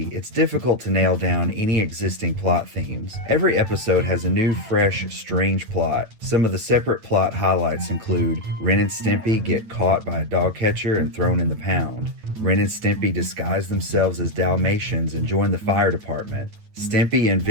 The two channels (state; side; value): late; left; 9.1 ms